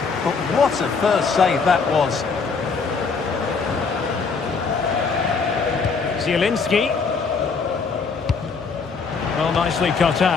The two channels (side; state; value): right; quieter; 5.0 dB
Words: but what a first save that was. Zielinski. Well, nicely cut